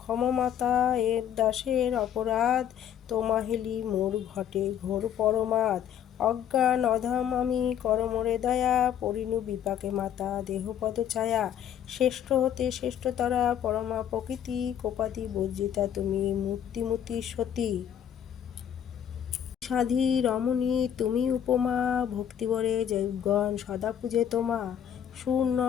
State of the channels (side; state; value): right; quieter; 9.6 dB